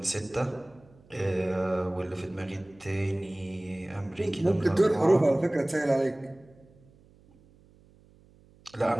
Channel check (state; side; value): noise; right; hum, 28 dB below the sound